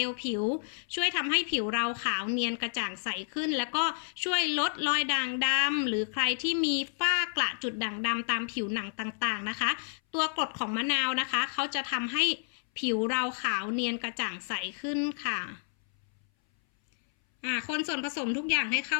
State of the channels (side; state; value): right; silent; 58 dB below the other